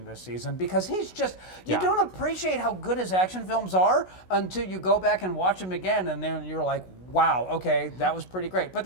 this season because he's just, you don't appreciate how good his action films are until you go back and watch them again, and then you're like, wow, okay, that was pretty great. But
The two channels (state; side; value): late; right; 16 ms